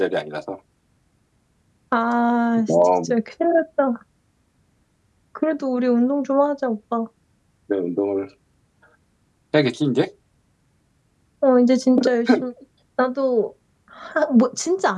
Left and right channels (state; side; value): identical; both; correlation 1.00